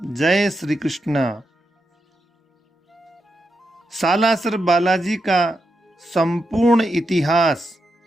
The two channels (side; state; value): both; normal; correlation 0.86